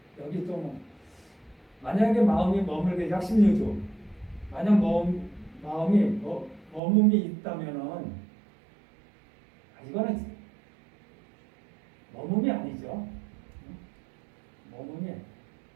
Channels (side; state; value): left; drops out; at 6.8 s